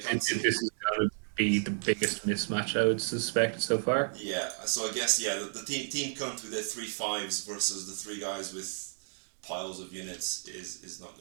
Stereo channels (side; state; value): left; silent; 56 dB below the other